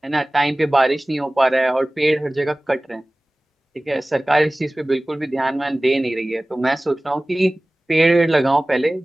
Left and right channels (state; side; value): normal; both; correlation 0.98